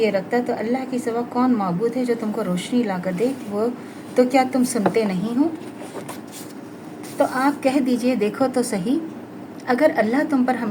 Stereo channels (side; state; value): both; identical; correlation 1.00